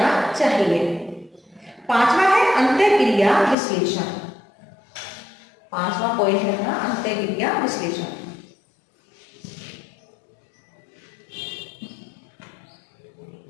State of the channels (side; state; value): right; drops out; at 3.6 s